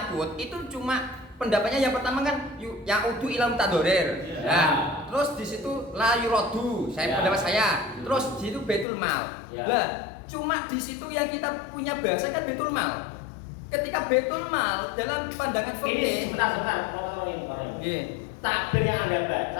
itu cuma pendapatnya yang pertama kan ya'udu ila mutadorir. Nah, terus di situ la yuradu, pendapat saya. Terus di situ Baitul Mal. Lah, cuma di situ yang kita punya bahasa kan Baitul Mal. Ketika Baitul Mal dalam pandangan fikih. Sebentar, Nggih. Takbir yang Anda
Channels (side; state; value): right; drops out; at 8.8 s